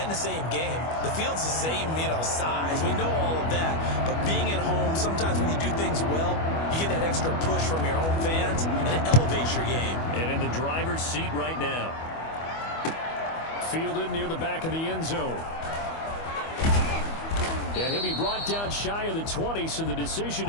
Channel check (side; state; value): right; late; 25 ms